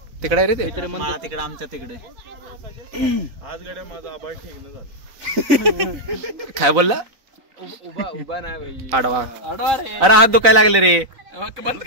तिकडे रे ते. तिकडे आमच्या तिकडे. आज गड्या माझा आभार ठीक झालं. काय बोलला? उभा नाही आडवा. रे. अरे हात दुखायला लागले रे. बंद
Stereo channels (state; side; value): late; left; 4.0 ms